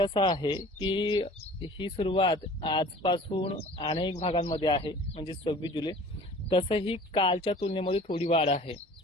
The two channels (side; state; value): both; normal; correlation 0.46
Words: आहे की ही सुरुवात आजपासून अनेक भागांमध्ये आहे, म्हणजे 26 जुलै। तसंही कालच्या तुलनेमध्ये थोडी वाढ आहे,